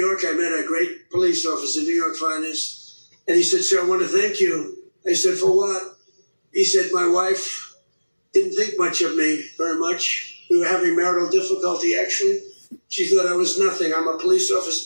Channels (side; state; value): both; inverted; correlation -1.00